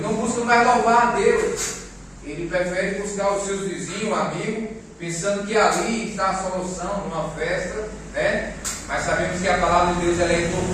não busca mais louvar a Deus. Ele prefere buscar os seus vizinhos, amigos, pensando que ali está a solução numa festa, né? Mas sabemos que a palavra de Deus ela é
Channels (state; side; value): identical; both; correlation 1.00